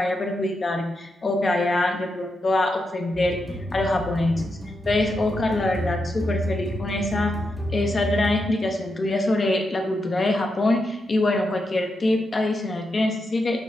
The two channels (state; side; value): normal; both; correlation 0.85